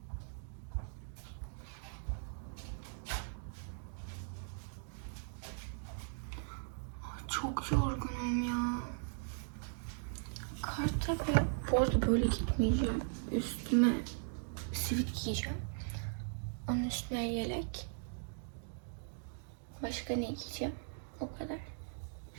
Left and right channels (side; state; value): left; silent; digital silence